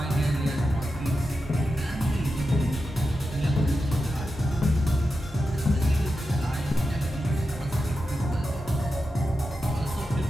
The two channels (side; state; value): both; normal; correlation 0.90